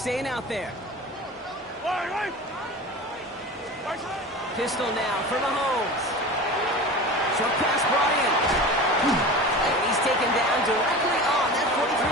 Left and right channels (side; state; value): both; normal; correlation 0.33